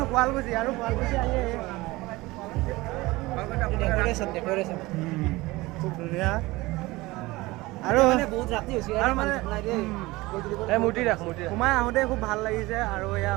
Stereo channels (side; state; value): left; quieter; 20.6 dB